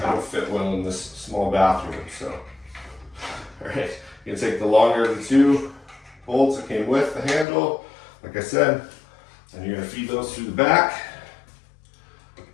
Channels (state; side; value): drops out; right; at 7.5 s